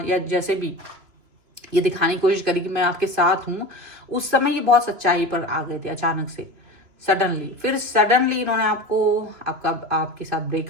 या जैसे भी ये दिखाने की कोशिश करी कि मैं आपके साथ हूं, उस समय ये बहुत सच्चाई पर आ गए थे अचानक से, सडनली। फिर सडनली इन्होंने आपके साथ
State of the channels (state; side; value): late; left; 3.0 ms